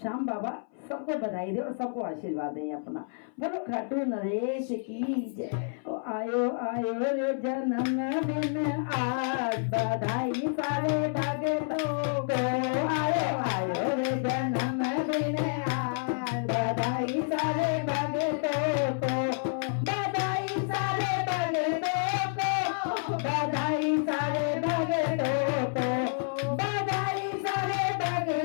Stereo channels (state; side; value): silent; right; 58 dB below the other